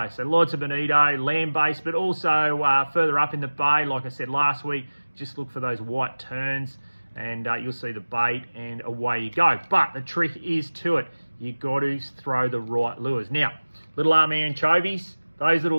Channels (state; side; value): inverted; both; correlation -1.00